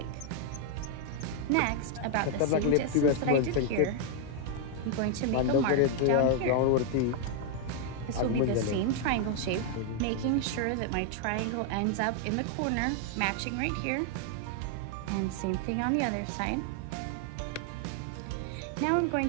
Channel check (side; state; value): both; different; correlation 0.00